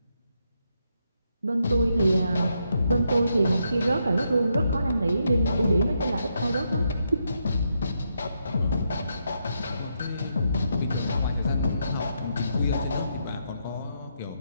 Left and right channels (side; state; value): both; inverted; correlation -0.80